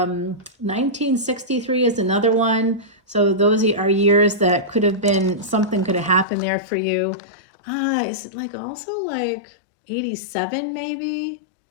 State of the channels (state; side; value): drops out; right; at 6.2 s